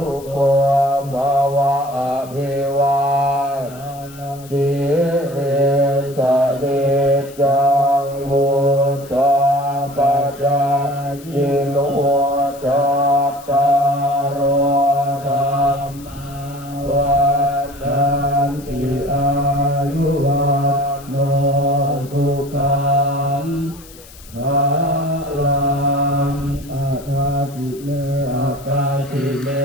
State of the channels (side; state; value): left; noise; hiss, 21 dB below the sound